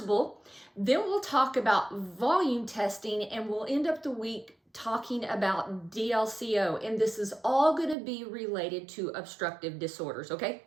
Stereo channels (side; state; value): left; drops out; at 8.0 s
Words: Then we'll talk about volume testing, and we'll end up the week talking about DLCO, and this is all going to be related to obstructive disorders, okay?